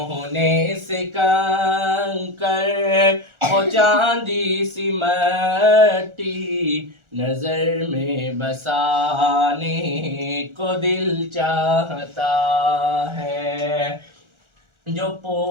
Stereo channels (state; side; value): late; left; 1.4 ms